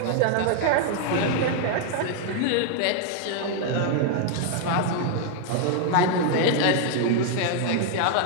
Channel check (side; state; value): both; different; correlation 0.00